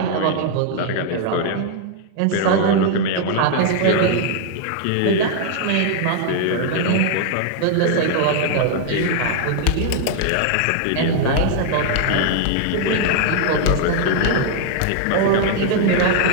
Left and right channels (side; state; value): both; different; correlation 0.00